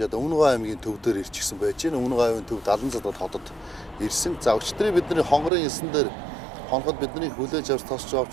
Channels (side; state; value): left; drops out; at 5.5 s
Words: Өмнөгов аймгийн төв дээр ирчихсэн байж байна. Өмнөгов аймгийн төв 70 задад хотод ирсэн. За өчтөрийн бидний хонгорын элсэн дээр хоноход бидний хүлээж авч тосч